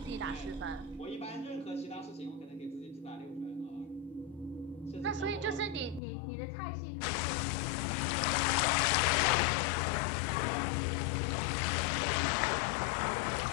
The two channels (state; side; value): drops out; right; at 6.0 s